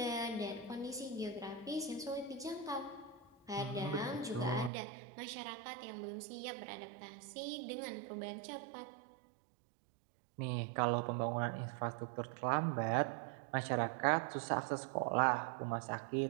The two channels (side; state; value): left; drops out; at 4.7 s